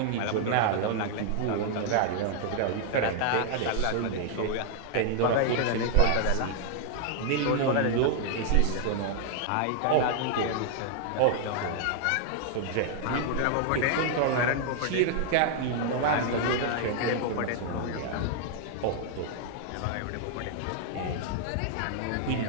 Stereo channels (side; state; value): both; different; correlation -0.01